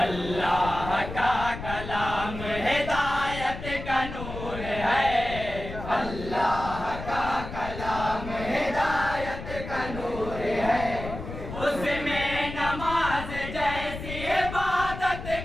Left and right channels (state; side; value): noise; left; rumble, 9 dB below the sound